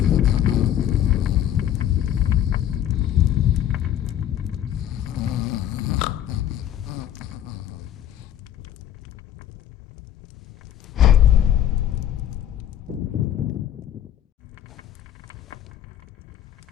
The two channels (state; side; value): quieter; right; 11.0 dB